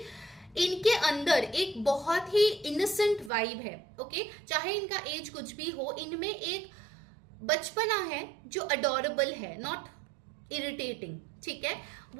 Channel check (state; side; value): drops out; left; at 3.3 s